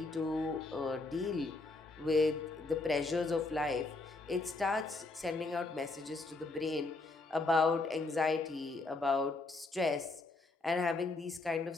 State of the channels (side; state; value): right; quieter; 3.4 dB